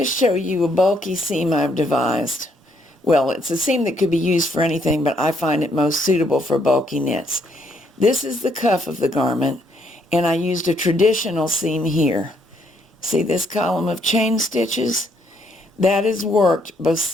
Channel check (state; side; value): normal; both; correlation 0.71